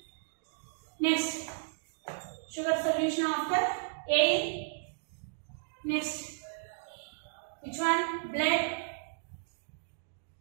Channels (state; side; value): silent; left; digital silence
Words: Next, sugar solution after air. Next, which one? Blood.